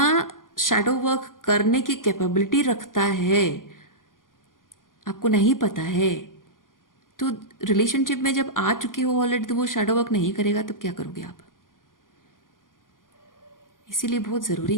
शैडो वर्क करने की कैपेबिलिटी रखता है आपको नहीं पता है। तो रिलेशनशिप में जब आ चुके हो ऑलरेडी, तो वो शैडो वर्क नहीं करेगा, तो क्या करोगे आप। इसीलिए बहुत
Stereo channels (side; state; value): right; late; 0.90 ms